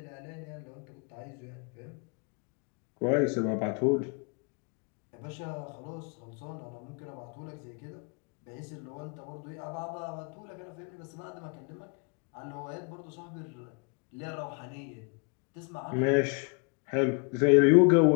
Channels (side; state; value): right; quieter; 35.1 dB